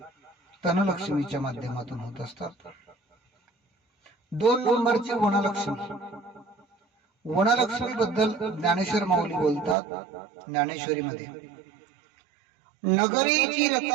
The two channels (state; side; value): drops out; left; at 9.8 s